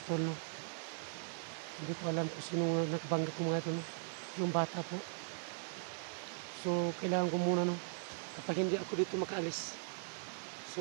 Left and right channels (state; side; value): silent; left; digital silence